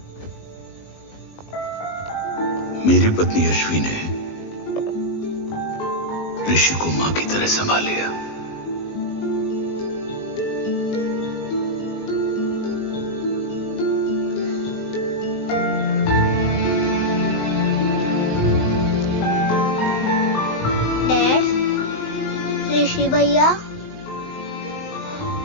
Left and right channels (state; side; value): late; right; 19 ms